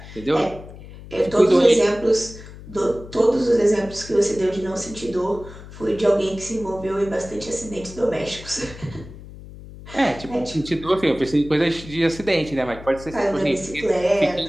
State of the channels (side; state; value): left; noise; hum, 16 dB below the sound